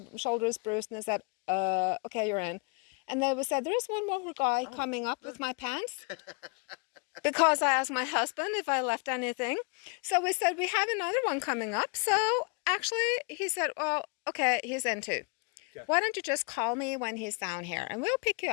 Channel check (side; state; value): right; quieter; 34.6 dB